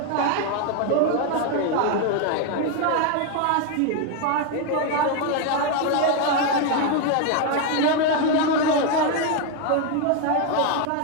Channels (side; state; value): both; different; correlation 0.01